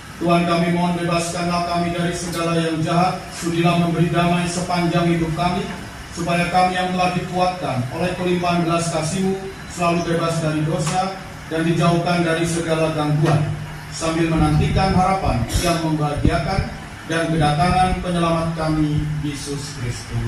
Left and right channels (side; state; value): both; identical; correlation 1.00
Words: Tuhan, kami mohon bebaskanlah kami dari segala yang jahat, sudilah memberi damai sepanjang hidup kami, supaya kami yang telah dikuatkan oleh kelimpahan belas kasih-Mu selalu bebas dari dosa dan dijauhkan dari segala gangguan, sambil menantikan harapan yang membahagiakan dan kedatangan penyelamat kami, Yesus